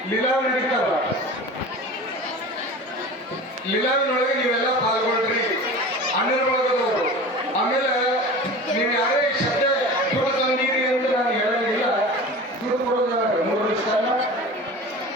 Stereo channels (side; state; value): both; normal; correlation 0.35